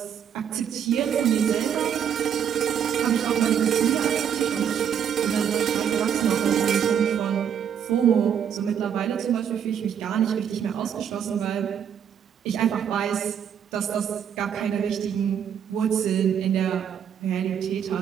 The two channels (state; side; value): quieter; left; 8.5 dB